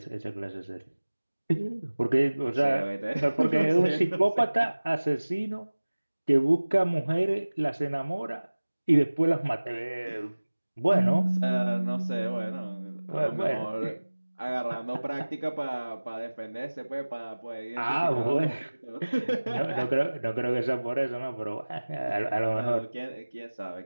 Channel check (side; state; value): both; inverted; correlation -1.00